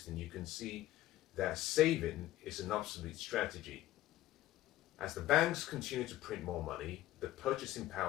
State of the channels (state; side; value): quieter; right; 15.3 dB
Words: you can see that saving is an obsolete strategy. As the banks continue to print more money, the purchasing